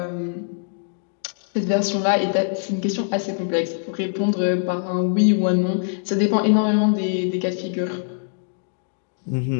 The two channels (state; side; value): silent; right; digital silence